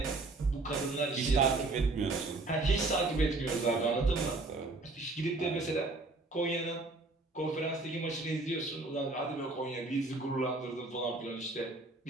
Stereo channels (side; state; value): left; quieter; 3.3 dB